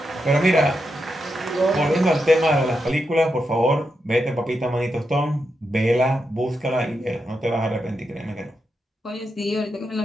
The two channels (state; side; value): normal; both; correlation 0.85